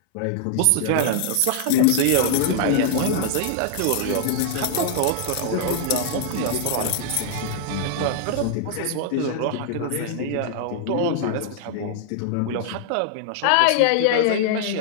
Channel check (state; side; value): different; both; correlation 0.00